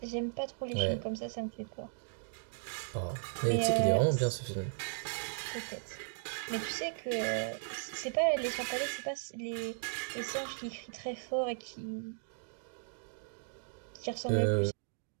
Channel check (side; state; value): left; silent; digital silence